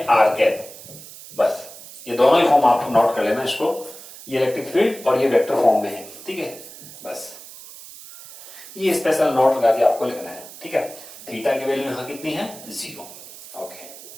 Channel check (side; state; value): right; noise; hiss, 16 dB below the sound